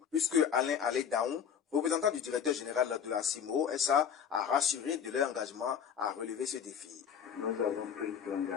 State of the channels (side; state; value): right; quieter; 7.7 dB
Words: puisque Alain Alédaon, représentant du directeur général de la CIMO SA, a rassuré de leur engagement à relever ce défi. Nous avons pris